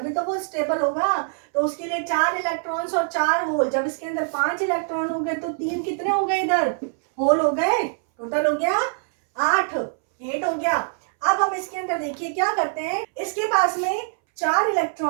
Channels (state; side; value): silent; left; 63 dB below the other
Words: तो वो स्टेबल होगा। तो उसके लिए 4 इलेक्ट्रॉन्स और 4 होल। जब इसके अंदर 5 इलेक्ट्रॉन हो गए तो 3 कितने हो गए? इधर होल हो गए, टोटल हो गया 8 हो गया। अब हम इसके अंदर देखिए क्या करते हैं, इसके पास में 4